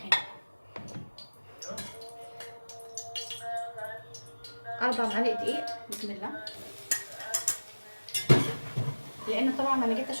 4 معالق دقيق. بسم الله. لان طبعا انا جيت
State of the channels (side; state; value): both; inverted; correlation -1.00